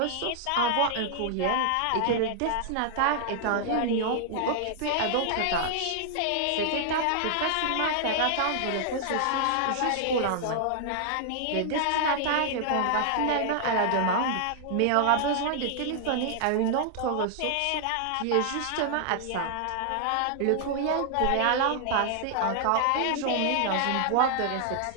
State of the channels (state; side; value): different; both; correlation -0.01